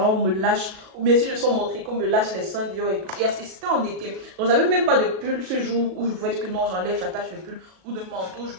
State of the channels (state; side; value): late; left; 37 ms